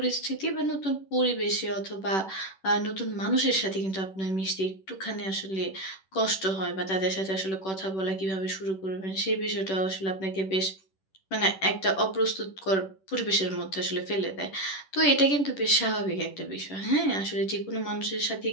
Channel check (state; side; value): late; right; 10 ms